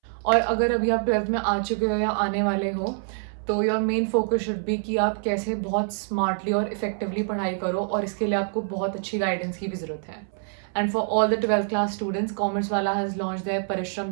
और अगर अभी आप 12th में आ चुके हो या आने वाले हो, तो your main focus should be कि आप कैसे बहुत स्मार्टली और इफेक्टिवली पढ़ाई करो, और इसके लिए आपको बहुत अच्छी गाइडेंस की भी ज़रूरत है. And for all the 12th class students, commerce वाला हैज़ लॉन्च देयर परिश्रम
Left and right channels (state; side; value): silent; left; 61 dB below the other